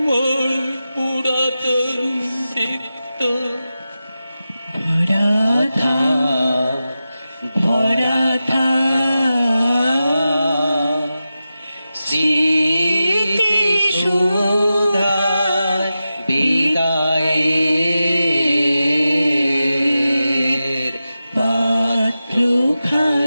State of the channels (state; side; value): inverted; both; correlation -0.93